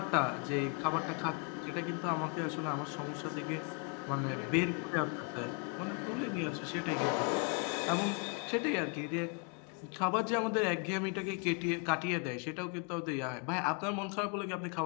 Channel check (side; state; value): right; quieter; 37.7 dB